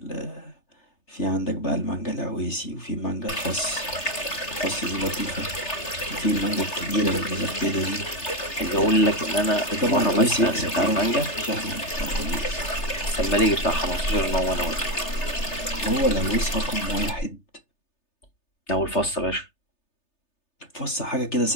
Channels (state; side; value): late; right; 3.3 ms